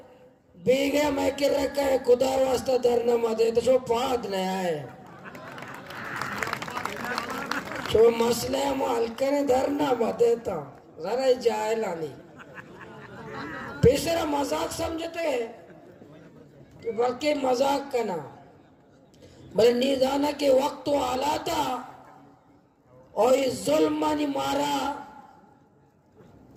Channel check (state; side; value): identical; both; correlation 1.00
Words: बीगे मैं कि रखा है खुदा वास्ता दरना मत दे तो शो पाद नहीं आए शो मसले हम हल्के ने दरना मत देता जरा ही जाए लानी बेशरा मजाक समझते हैं कि बल्कि मजाक करना बल्कि निदाना के वक्त तो आला था और इस जुल्म ने मारा